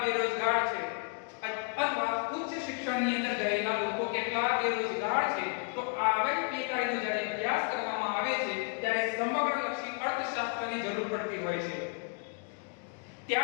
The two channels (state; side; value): quieter; right; 38.7 dB